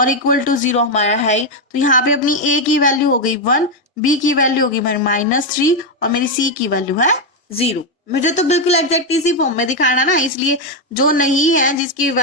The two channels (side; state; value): both; normal; correlation 0.04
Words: इक्वल टू 0 हमारा है। तो यहाँ पे अपनी a की वैल्यू हो गई 1, b की वैल्यू होगी -3 और मेरी c की वैल्यू है 0। मुझे तो बिल्कुल एग्जैक्ट इसी फॉर्म में दिखाना ना, इसलिए जो नहीं है जिसकी